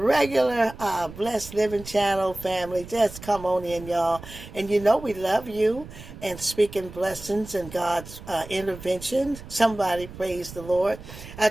Blessed Living Channel family. Just come on in, y'all. And you know we love you and speaking blessings and God's intervention. Somebody praise the Lord. I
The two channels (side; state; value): right; noise; rumble, 15 dB below the sound